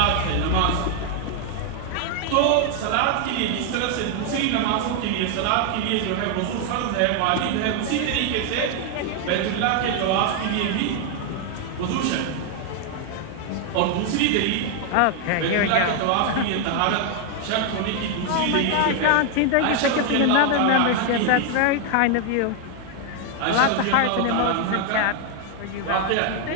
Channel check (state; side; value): different; both; correlation 0.00